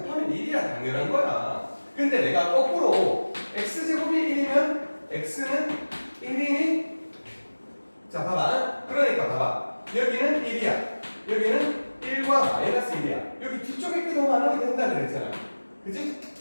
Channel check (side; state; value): both; inverted; correlation -1.00